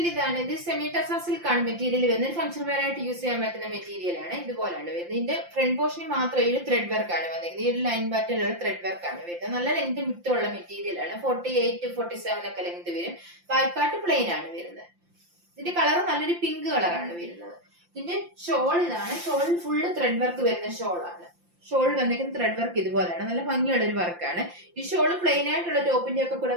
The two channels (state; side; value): late; left; 5.8 ms